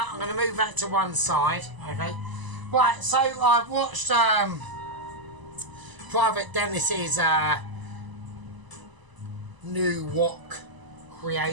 going to move that to one side, okay? Right, so I've watched Private Dennis's new wok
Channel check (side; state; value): left; late; 1.0 ms